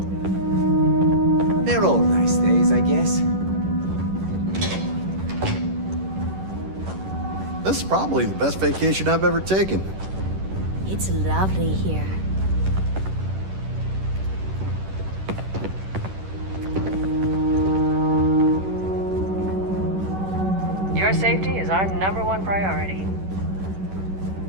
They're all nice days, I guess. This is probably the best vacation I've ever taken. It's lovely here. Your safety is our #1 priority.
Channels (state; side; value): late; left; 11 ms